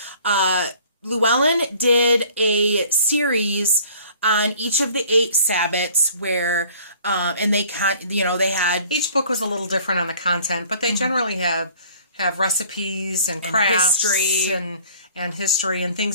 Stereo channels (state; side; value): inverted; both; correlation -0.52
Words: Llewellyn did a series on each of the 8 Sabbats where, and they they had each book was a little different on the content, but they generally have recipes and crafts and history and